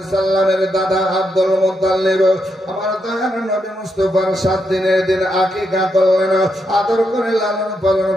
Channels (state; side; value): normal; both; correlation 0.81